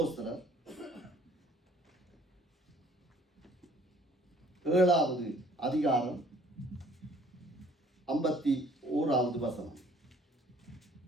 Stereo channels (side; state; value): both; normal; correlation 0.58